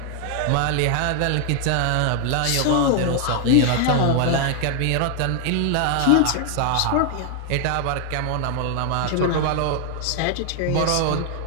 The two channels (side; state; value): both; different; correlation 0.00